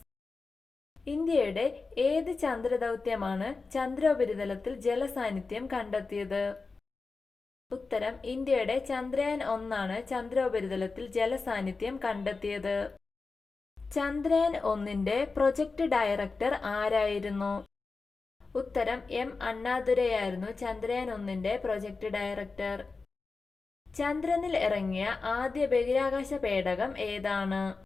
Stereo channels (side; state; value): right; quieter; 4.1 dB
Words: ഇന്ത്യയുടെ ഏത് ചന്ദ്രദൗത്യമാണ് ചന്ദ്രോപരിതലത്തിൽ ജലസാന്നിധ്യം കണ്ടെത്തിയത്? ഉത്തരം ഇന്ത്യയുടെ ചന്ദ്രയാൻ 1 ചന്ദ്രോപരിതലത്തിൽ ജലസാന്നിധ്യം കണ്ടെത്തിയത്. ചന്ദ്രയാൻ 1 പ്രൊജക്ട് ഡയറക്ടർ ആരായിരുന്നു? ഉത്തരം M അണ്ണാദുരൈയായിരുന്നു ചന്ദ്രയാൻ 1 പ്രൊജക്ട് ഡയറക്ടർ. ചന്ദ്രനിൽ ഇറങ്ങിയ ആദ്യ ബഹിരാകാശ പേടകം ഏതാണ്?